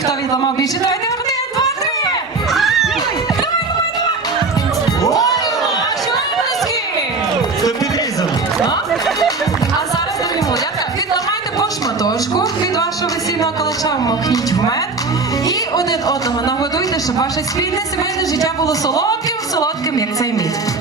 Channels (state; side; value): quieter; left; 3.8 dB